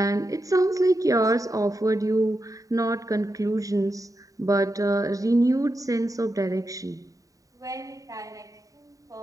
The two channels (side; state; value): left; late; 0.16 ms